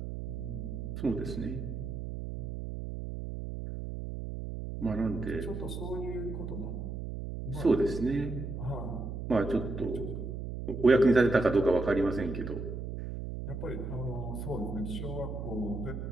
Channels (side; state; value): right; noise; hum, 6 dB below the sound